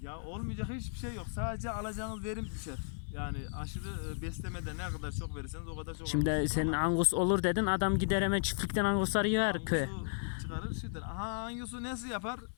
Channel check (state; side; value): silent; right; 55 dB below the other